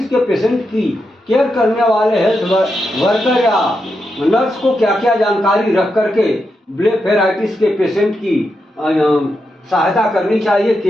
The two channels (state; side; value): normal; both; correlation 0.85